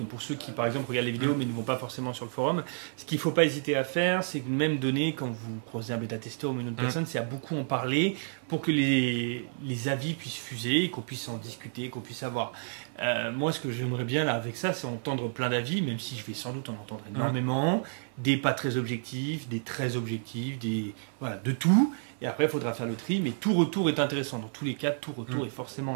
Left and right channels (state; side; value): silent; left; 58 dB below the other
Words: pour ceux qui, par exemple, regardent les vidéos mais ne vont pas forcément sur le forum, ce qu'il ne faut pas hésiter à faire, c'est que même donner, quand vous croisez un bêta-testeur ou une autre personne, c'est à beaucoup en parler pour que les avis puissent fuser, qu'on puisse en discuter, qu'on puisse avoir. Moi, ce que j'aimerais bien là avec ça, c'est entendre plein d'avis, même si je vais sans doute en entendre énormément, des pas très objectifs, des très objectifs, voilà, de tout. Et après, il faudra faire le tri, mais tout retour est intéressant. Dans tous les cas, tout retour est forcément